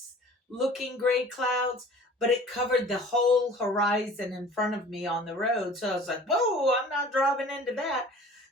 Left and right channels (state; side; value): normal; both; correlation 0.46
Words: looking gray clouds, but it covered the whole horizon in front of me on the road. So I was like, whoa, I'm not driving into that.